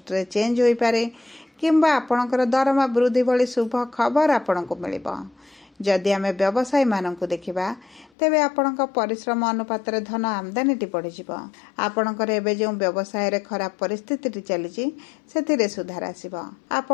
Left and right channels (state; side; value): drops out; right; at 8.1 s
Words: ଚେଞ୍ଜ ହୋଇପାରେ କିମ୍ବା ଆପଣଙ୍କର ଦରମା ବୃଦ୍ଧି ଭଳି ଶୁଭ ଖବର ଆପଣଙ୍କୁ ମିଳିବ। ଯଦି ଆମେ ବ୍ୟବସାୟୀମାନଙ୍କୁ ଦେଖିବା, ତେବେ ଆପଣଙ୍କ ପରିଶ୍ରମ ଅନୁପାତରେ ଧନ ଆମଦାନୀଟି ବଢ଼ିଯିବ। ଆପଣଙ୍କର ଏବେ ଯେଉଁ ବ୍ୟବସାୟରେ ଖରାପ ପରିସ୍ଥିତିଟି ଚାଲିଛି ସେଥିରେ ସୁଧାର ଆସିବ।